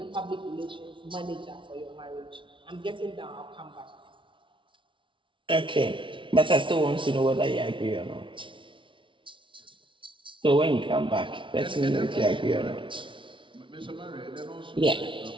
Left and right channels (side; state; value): left; late; 0.25 ms